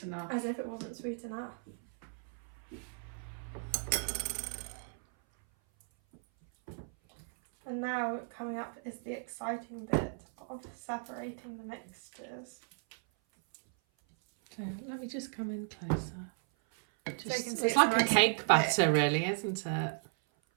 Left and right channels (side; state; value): left; silent; 54 dB below the other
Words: enough. As if it wasn't sweet enough. And now coming up is the exciting bit of separating the mixtures. So let me just come in closer. So you can see It's like nice a cake and batter, thick. really, isn't it?